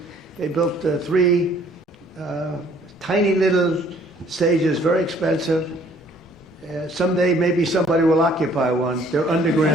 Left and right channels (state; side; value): normal; both; correlation 0.59